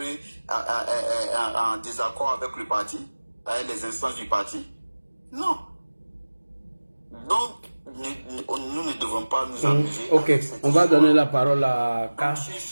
en désaccord avec le parti, avec les instances du parti. Non. Donc, nous ne devons pas nous amuser. Ok, on va donner la parole à K.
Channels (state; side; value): inverted; both; correlation -1.00